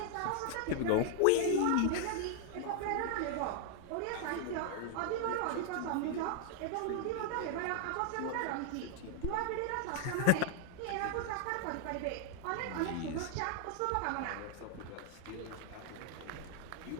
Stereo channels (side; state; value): both; different; correlation 0.00